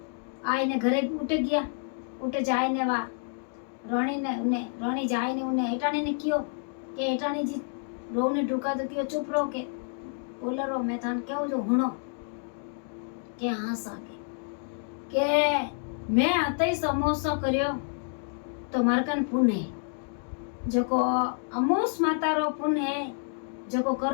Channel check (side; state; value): right; silent; 59 dB below the other